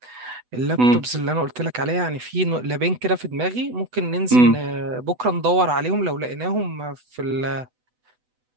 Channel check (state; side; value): late; left; 8.0 ms